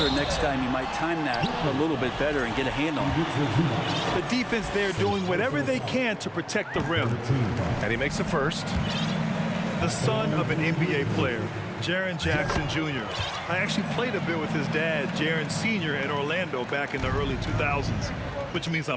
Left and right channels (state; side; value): identical; both; correlation 1.00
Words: next time you might time that a little bit better and get a hand on it. The defense there doing whatever they can to protect the rim. And he makes the first. The son of an NBA player, Jaren Jackson Jr. I actually played a bit with his dad, Jaren Sr. at Orlando back in the early 2000s, which means